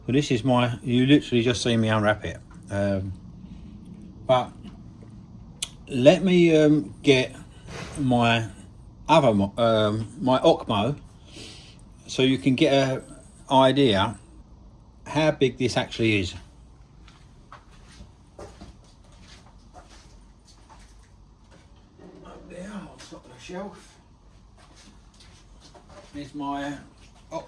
So this is my, you literally just see me unwrap it, but let me get my other my Ocmo, so you can get an idea how big this actually is. Up there on top of the shelf is my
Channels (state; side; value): identical; both; correlation 1.00